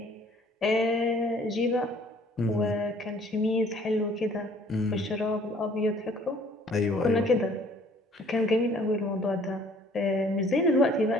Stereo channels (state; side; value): normal; both; correlation 0.57